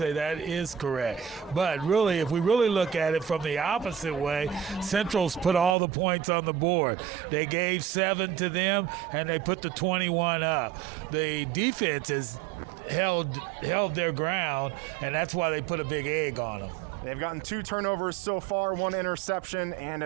that is correct. But really, if we really look at it from the opposite way, Central's put all the points on the board. They gave 7 to them, and they put the 21 up. The defense has held their ground, and that's why they put a big egg on them. They've gotten 2 turnovers so far, 1 interception and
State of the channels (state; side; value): drops out; left; at 5.8 s